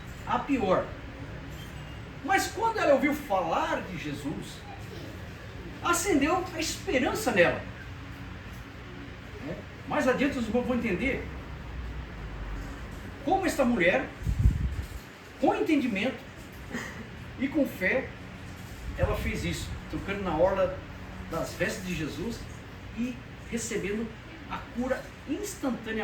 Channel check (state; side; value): identical; both; correlation 1.00